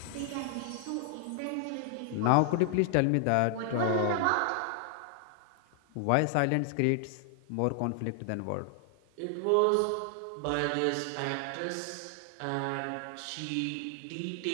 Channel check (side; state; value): both; different; correlation 0.00